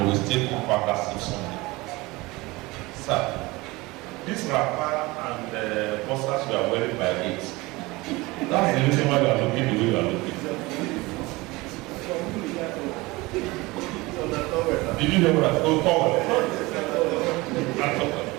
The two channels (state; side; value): quieter; left; 22.2 dB